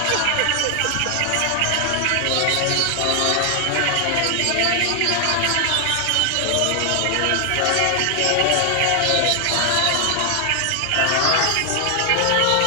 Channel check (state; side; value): different; both; correlation 0.00